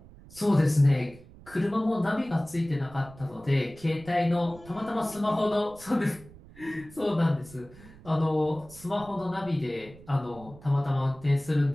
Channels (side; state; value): right; noise; rumble, 21 dB below the sound